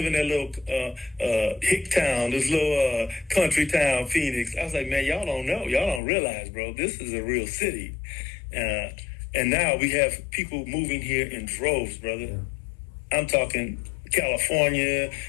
in that little hick town, this little country town, Phoenix? I was like, man, y'all don't know, y'all don't realize, bro. This is a real city, and now we have people moving here in droves, brother. I'm talking California,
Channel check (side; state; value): right; drops out; at 6.0 s